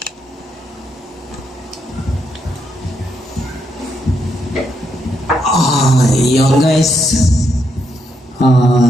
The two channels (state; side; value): normal; both; correlation 0.78